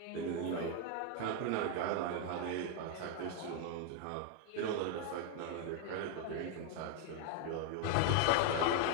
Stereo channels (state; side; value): different; both; correlation 0.01